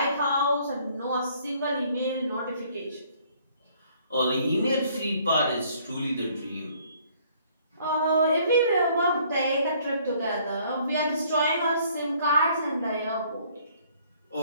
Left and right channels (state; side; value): inverted; both; correlation -0.61